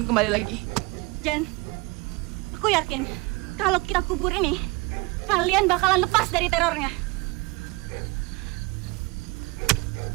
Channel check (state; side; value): quieter; left; 25.5 dB